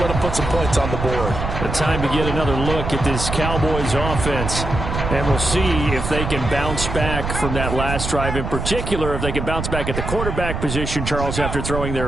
them put some points on the board. The time to get another look at this Cowboys offense. And we'll see if they can bounce back from that last drive. In particular, if they can bounce back at the quarterback position, Charles, after throwing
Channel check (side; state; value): right; noise; rumble, 4 dB below the sound